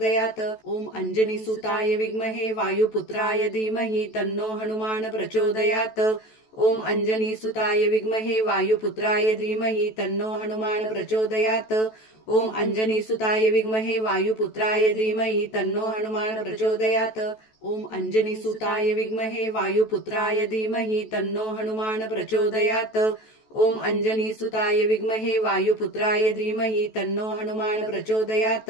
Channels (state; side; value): late; right; 14 ms